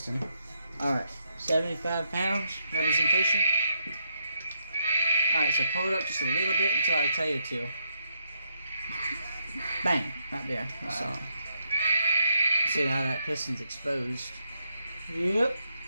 Alright, 75 pounds representation. Alright, so pull it up just a little bit until I tell you to. Bang! Right there. That's all. See how that piston's exposed. Yep.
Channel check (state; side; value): inverted; both; correlation -0.79